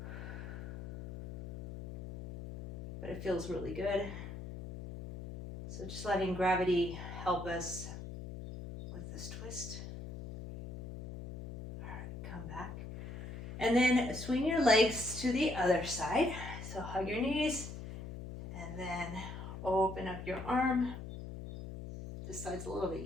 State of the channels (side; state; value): left; noise; hum, 9 dB below the sound